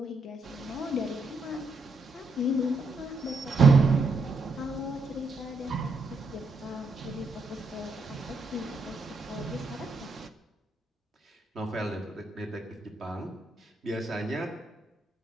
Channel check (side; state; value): left; quieter; 3.0 dB